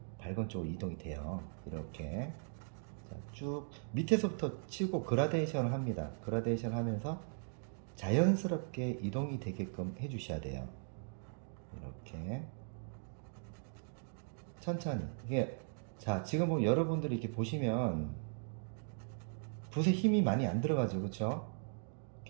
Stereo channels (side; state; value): left; silent; digital silence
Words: 밝은 쪽으로 이동이 돼요. 이렇게. 자, 쭉 밑에서부터 치고 그라데이션을 합니다. 그라데이션 하면서 자연스럽게 이동이 되게끔 해주셔야 돼요. 이렇게 천천히. 이게, 자, 지금 뭐 여러분들이 이렇게 보시면 붓에 힘이 많이 안 들어가죠, 그렇죠?